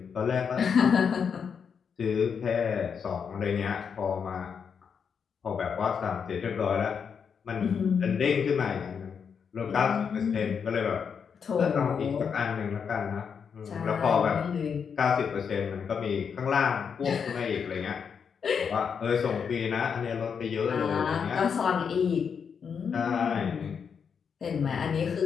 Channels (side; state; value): right; quieter; 6.6 dB